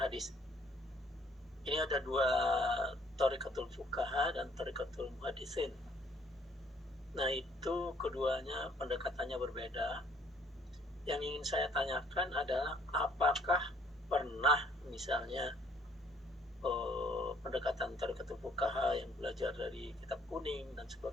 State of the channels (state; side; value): normal; both; correlation 0.62